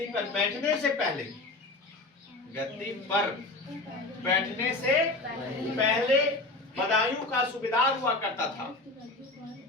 पर बैठने से पहले, गद्दी पर बैठने से पहले बदायूं का सूबेदार हुआ करता था।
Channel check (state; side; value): quieter; right; 3.0 dB